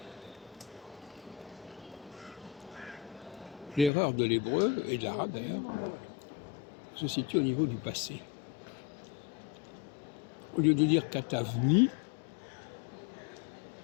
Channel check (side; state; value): right; drops out; at 3.9 s